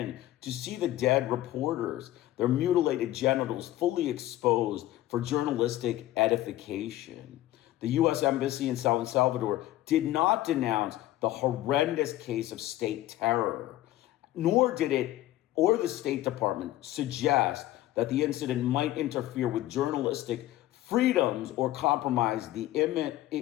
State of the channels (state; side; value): quieter; right; 15.0 dB